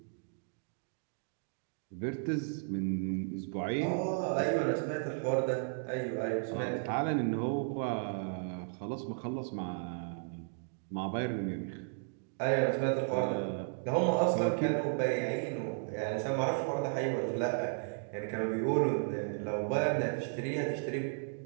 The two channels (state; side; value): silent; left; digital silence